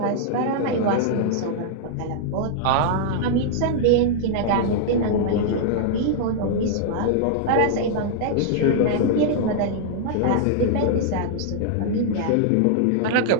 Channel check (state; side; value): different; both; correlation -0.01